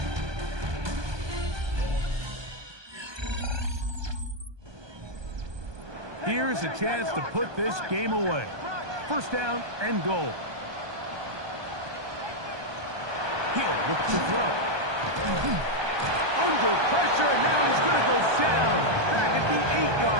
Here's a chance to put this game away. 1st down and goal. He'll look to throw. Under pressure, and now he's going to go down back at the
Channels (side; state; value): left; late; 1.2 ms